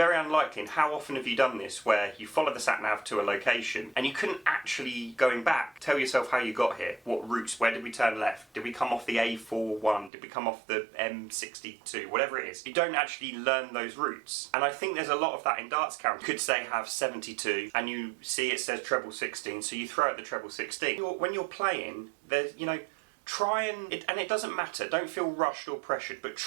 unlikely, and how often have you done this, where you follow the SatNav to a location and you couldn't actually, going back, tell yourself how you got here, what routes, where did we turn left, did we come off the A41, did we come off the M62, whatever it is. You don't actually learn those routes. And I think there's a lot of that in Darts Counter. You could say have 72 and you see it says treble 16, so you throw out the treble 16. When you're playing, there's, you know, try and it doesn't matter, don't feel rushed or pressured, but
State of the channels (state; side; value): drops out; left; at 10.1 s